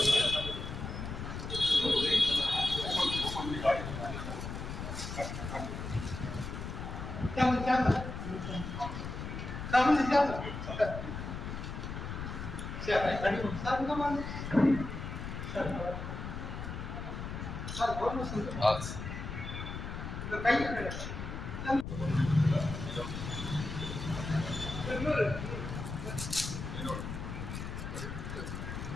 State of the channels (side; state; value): left; noise; rumble, 6 dB below the sound